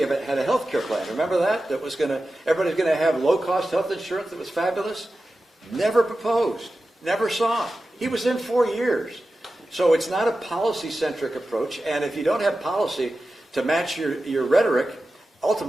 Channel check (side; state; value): both; normal; correlation 0.93